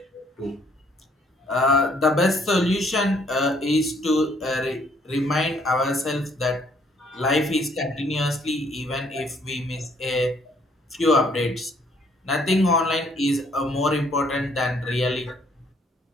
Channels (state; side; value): normal; both; correlation 0.65